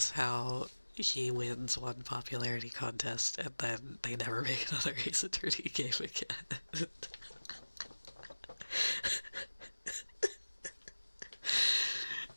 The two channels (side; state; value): both; inverted; correlation -1.00